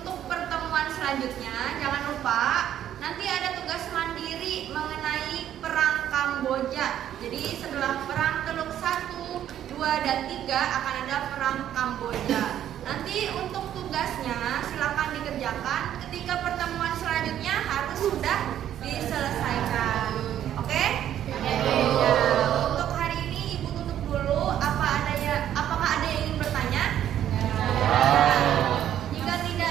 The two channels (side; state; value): left; quieter; 10.9 dB